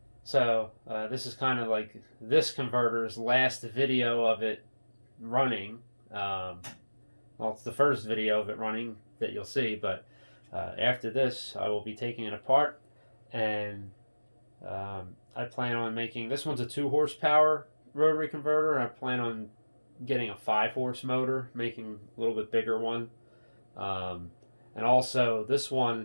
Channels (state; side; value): inverted; both; correlation -1.00